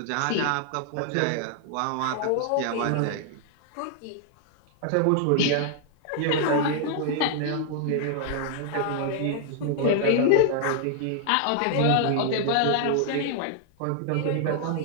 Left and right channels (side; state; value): both; different; correlation -0.01